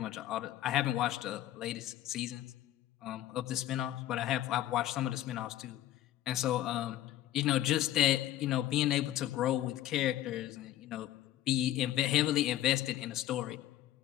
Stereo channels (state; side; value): quieter; right; 13.5 dB